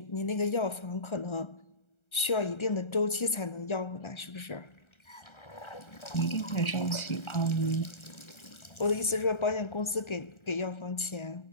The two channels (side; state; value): right; late; 1.3 ms